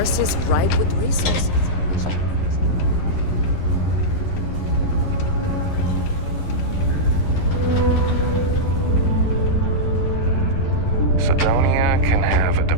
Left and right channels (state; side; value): late; right; 11 ms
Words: is ripe with resources. Cydonia can have a